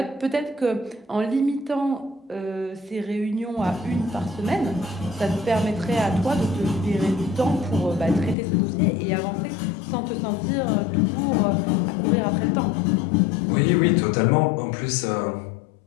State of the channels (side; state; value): right; drops out; at 8.3 s